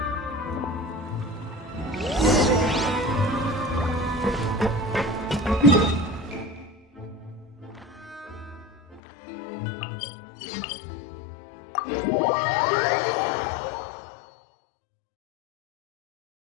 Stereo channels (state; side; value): drops out; right; at 9.0 s